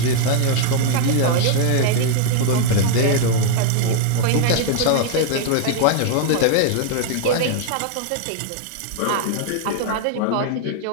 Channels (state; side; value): different; both; correlation 0.00